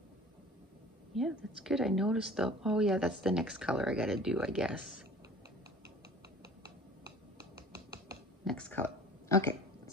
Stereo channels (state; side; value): normal; both; correlation 0.45